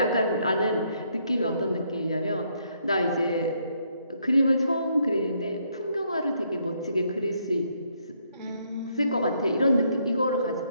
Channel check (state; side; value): inverted; both; correlation -0.72